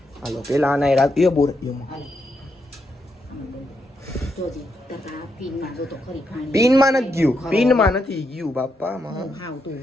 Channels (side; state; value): both; normal; correlation 0.81